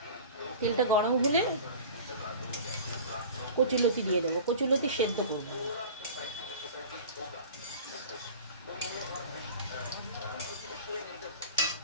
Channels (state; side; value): inverted; both; correlation -0.38